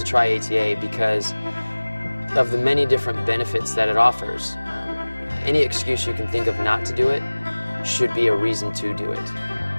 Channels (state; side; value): inverted; both; correlation -1.00